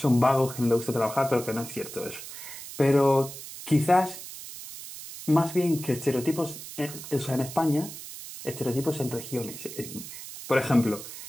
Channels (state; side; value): noise; right; hiss, 12 dB below the sound